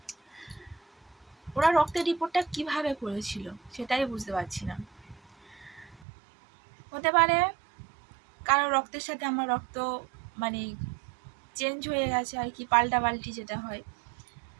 ওরা রক্তের রিপোর্টটা কিভাবে করেছিল সেটাই বুঝতে পারছি না। হতে পারে কারো রক্তের সাথে আমার রক্ত মানে চেঞ্জ হয়ে গেছে আর কি, পাল্টাপাল্টি যেটা হয়।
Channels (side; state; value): left; drops out; at 6.1 s